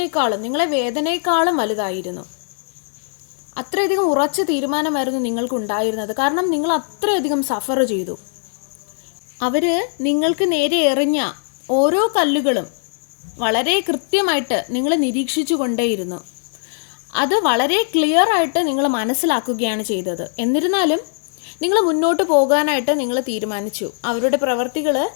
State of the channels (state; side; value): silent; right; 66 dB below the other